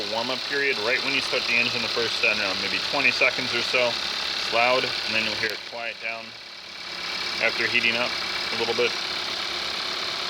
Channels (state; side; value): identical; both; correlation 1.00